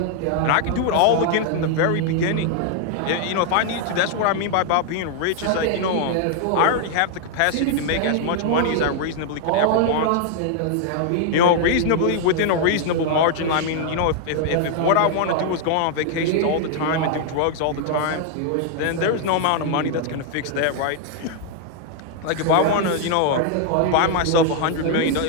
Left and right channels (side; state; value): both; different; correlation 0.00